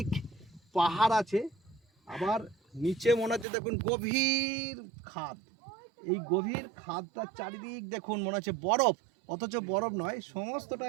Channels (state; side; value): drops out; left; at 3.5 s